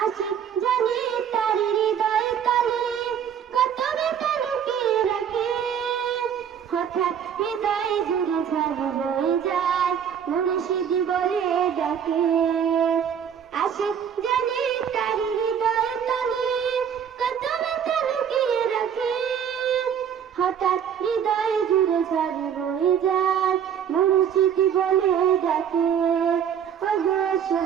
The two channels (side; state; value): left; quieter; 8.3 dB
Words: আশিক জানি তার হৃদয় কালে কত ব্যথা লুকিয়ে রাখে হঠাৎ হৃদয় জুড়ে ঝড় বয়ে যায় মুর্শিদ বলে ডাকে আশিক জানি তার হৃদয় কালে কত ব্যথা লুকিয়ে রাখে হঠাৎ হৃদয় জুড়ে ঝড় বয়ে যায় মুর্শিদ বলে ডাকে ওগো